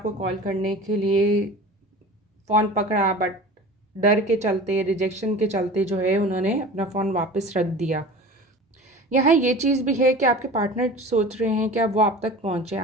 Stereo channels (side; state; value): both; normal; correlation 0.38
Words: कॉल करने के लिए फ़ोन पकड़ा, बट डर के चलते, रिजेक्शन के चलते जो है उन्होंने अपना फ़ोन वापस रख दिया। यहाँ ये चीज़ भी है कि आपके पार्टनर सोच रहे हैं कि अब वो आप तक पहुँचें,